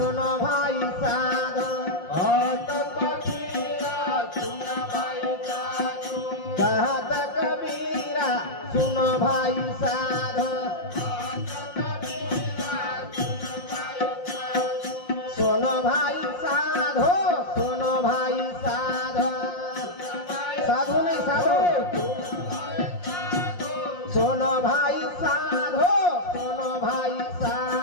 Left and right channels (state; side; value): late; right; 5.7 ms